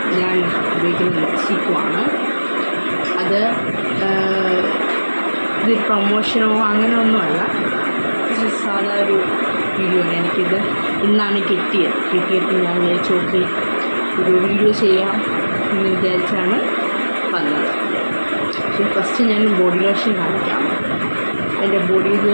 ഞാൻ ഉപയോഗിക്കുന്ന ലിപ്സ്റ്റിക്കുമാണ്. അത് ഇത് പ്രൊമോഷനോ അങ്ങനെ ഒന്നുമല്ല, സാധാ ഒരു വീഡിയോ ആണ്. എനിക്കിത് ഇന്നാണ് കിട്ടിയപ്പോൾ ഞാൻ വിചാരിച്ചു ഓക്കെ ഒരു വീഡിയോ ചെയ്യാം എന്ന് വിചാരിച്ചാണ് വന്നത്. പക്ഷേ ഫസ്റ്റ് ഞാൻ ബോഡി ലോഷൻ കാണിക്കാം. എൻ്റെ ബോഡി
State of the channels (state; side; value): inverted; both; correlation -1.00